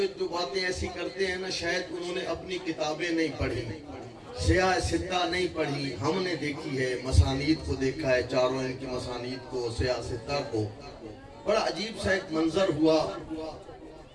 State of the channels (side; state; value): both; identical; correlation 1.00